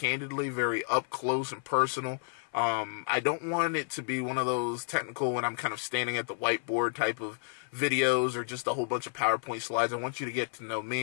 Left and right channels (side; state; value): right; silent; 57 dB below the other